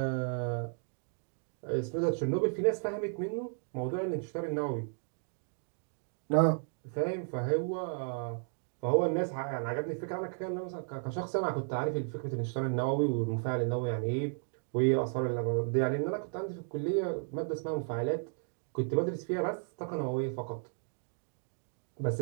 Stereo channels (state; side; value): silent; left; 55 dB below the other